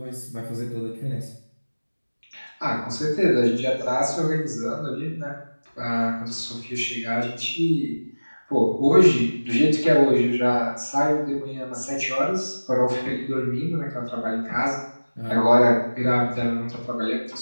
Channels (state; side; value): inverted; both; correlation -1.00